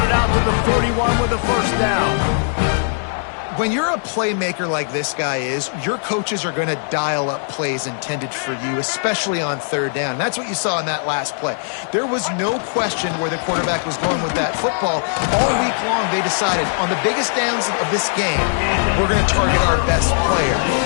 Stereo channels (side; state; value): right; silent; digital silence